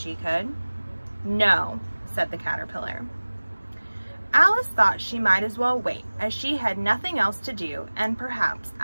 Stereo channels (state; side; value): inverted; both; correlation -1.00